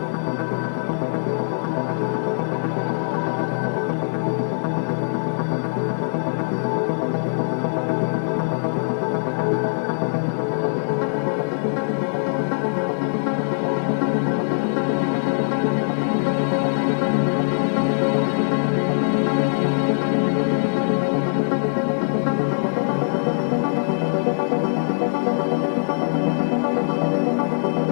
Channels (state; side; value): silent; right; 61 dB below the other